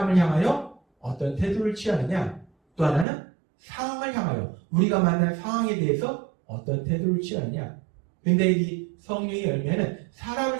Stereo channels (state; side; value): drops out; left; at 3.1 s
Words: 향하여 어떤 태도를 취하느냐, 또 하나는 상황을 향하여 우리가 만난 상황에 대해서 어떤 태도를 취하느냐. 근데 이 성령의 열매는